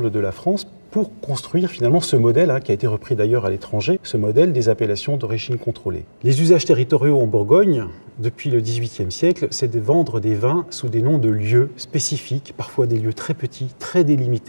de la France pour construire finalement ce modèle, qui a été repris d'ailleurs à l'étranger, ce modèle des appellations d'origine contrôlée. Les usages territoriaux en Bourgogne, depuis le XVIIIe siècle, c'est de vendre des vins sous des noms de lieux spécifiques, parfois des lieux très petits, très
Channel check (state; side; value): inverted; both; correlation -1.00